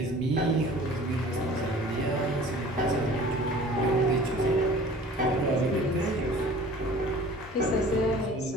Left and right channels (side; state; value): both; normal; correlation 0.45